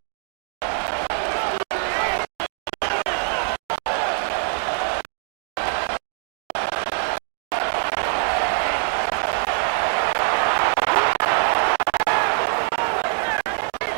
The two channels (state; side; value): silent; left; digital silence